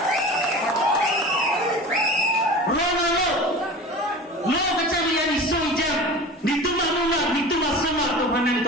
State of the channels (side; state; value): both; normal; correlation 0.35